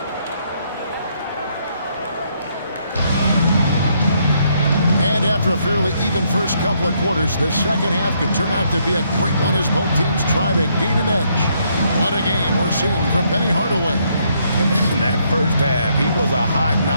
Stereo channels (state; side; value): inverted; both; correlation -0.72